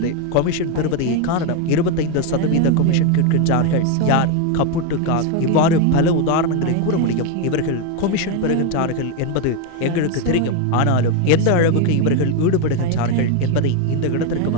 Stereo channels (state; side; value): different; both; correlation 0.02